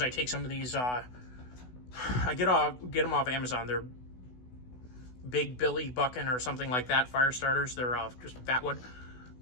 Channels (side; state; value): right; late; 16 ms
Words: I take some of these, I get them off Amazon. They're Big Billy Buckin or something like that, fire starters. They're just fat wood,